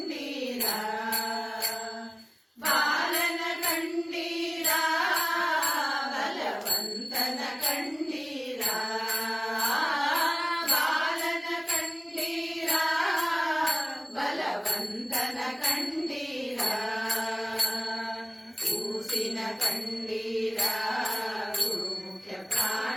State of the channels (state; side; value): identical; both; correlation 1.00